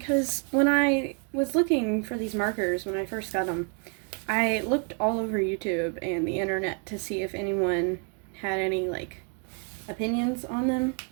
when I was looking for these markers when I first got them, I looked all over YouTube and the internet to see if anyone had any like opinions on them,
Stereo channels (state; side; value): quieter; left; 37.9 dB